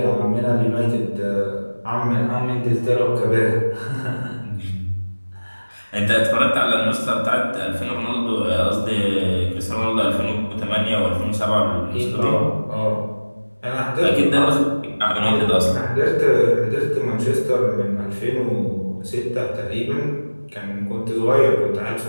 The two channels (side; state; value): both; inverted; correlation -1.00